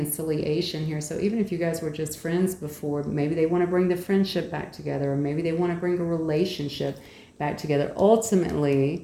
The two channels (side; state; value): both; identical; correlation 1.00